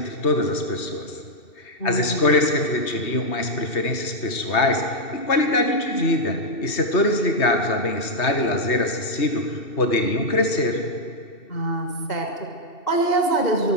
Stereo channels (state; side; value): late; right; 2.7 ms